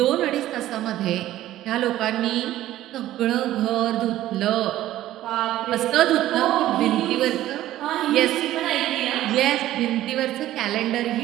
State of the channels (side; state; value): left; quieter; 14.1 dB